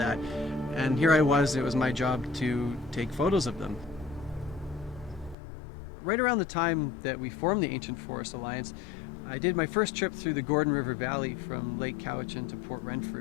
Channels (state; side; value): drops out; right; at 5.4 s